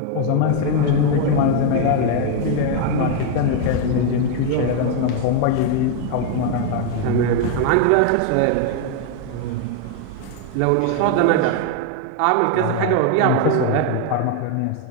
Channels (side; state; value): both; different; correlation 0.01